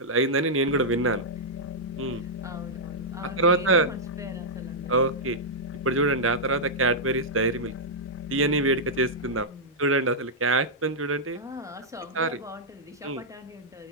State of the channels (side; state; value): both; normal; correlation -0.08